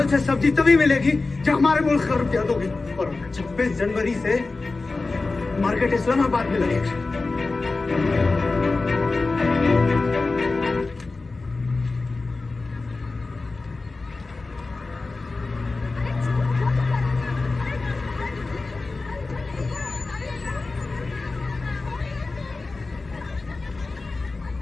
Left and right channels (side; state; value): right; quieter; 3.6 dB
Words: से सब्जी तभी मिलेगी जब हमारे मुल्क का रुपया दोगे। और 26 जनवरी से मार्केट इस्लामाबाद में लगेगा।